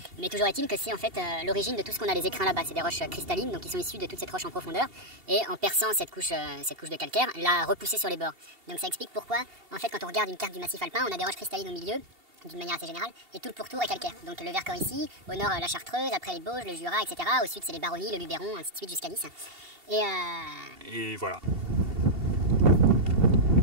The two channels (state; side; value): late; left; 2.7 ms